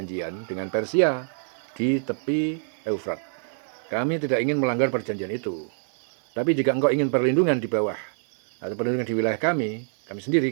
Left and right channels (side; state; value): left; silent; digital silence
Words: dengan Persia di tepi Eufrat. Kami tidak ingin melanggar perjanjian itu. Tapi jika engkau ingin perlindungan di bawah atau perlindungan di wilayah kami sendiri,